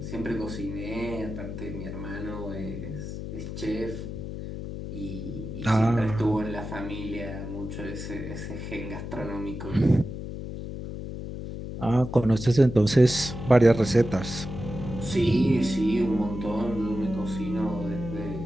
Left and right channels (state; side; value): noise; left; hum, 7 dB below the sound